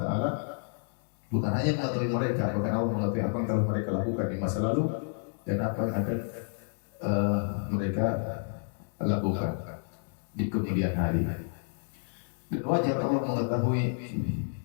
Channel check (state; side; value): silent; right; digital silence